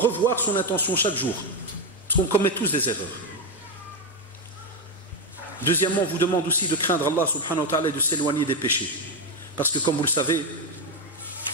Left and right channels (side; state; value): both; normal; correlation 0.08